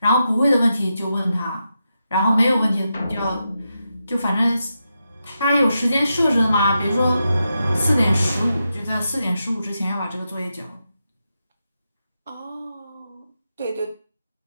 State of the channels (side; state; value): both; inverted; correlation -0.87